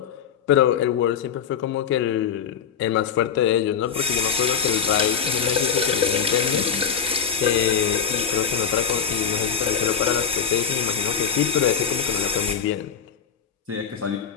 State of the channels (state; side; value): quieter; right; 7.2 dB